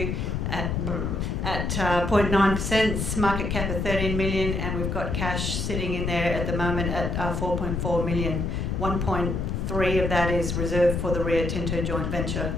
at 0.9%, market cap of 13 million, and we've got cash sitting in there at the moment at 4.4 million. 1.3 of that is reserved for the Rio Tinto joint venture.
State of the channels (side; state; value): left; noise; rumble, 1 dB below the sound